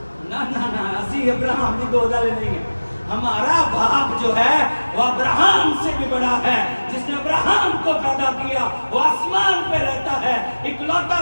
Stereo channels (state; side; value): inverted; both; correlation -1.00